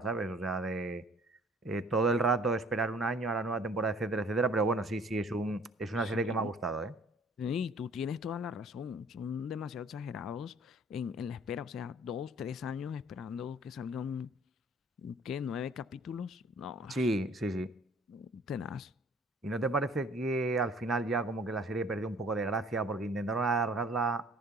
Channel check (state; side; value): normal; both; correlation 0.54